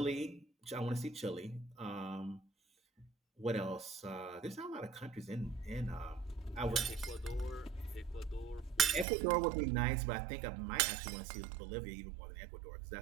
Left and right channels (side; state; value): left; drops out; at 9.1 s